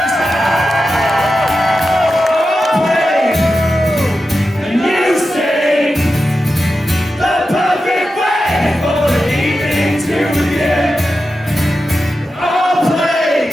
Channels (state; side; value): normal; both; correlation 0.91